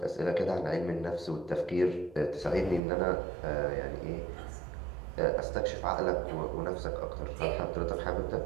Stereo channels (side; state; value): left; drops out; at 2.8 s